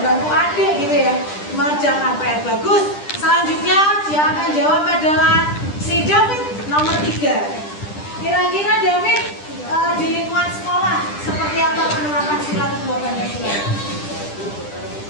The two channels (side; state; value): right; late; 10 ms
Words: adik gitu ya, mengerjakan PR. Bagus. Selanjutnya yang akan jawab adalah si David nomor 3. Kira-kira David di lingkungan sekolah seperti apa penerapan sila kedua Pancasila?